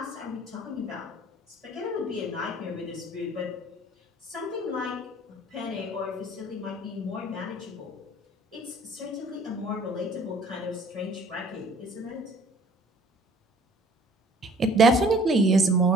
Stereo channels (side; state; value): both; normal; correlation 0.53